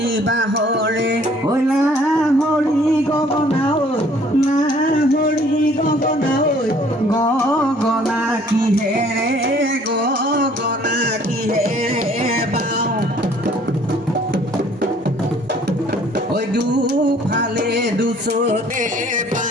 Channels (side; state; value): both; normal; correlation 0.57